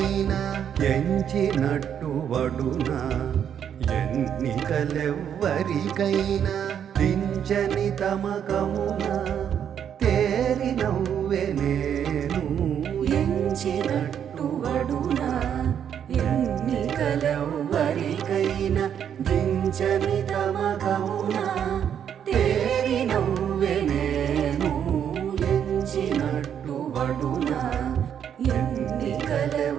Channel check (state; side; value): quieter; left; 8.8 dB